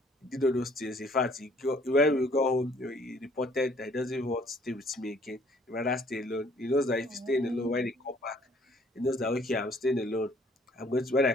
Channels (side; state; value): both; normal; correlation 0.60